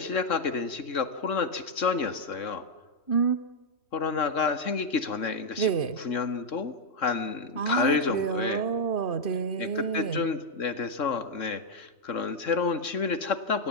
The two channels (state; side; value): late; right; 3.7 ms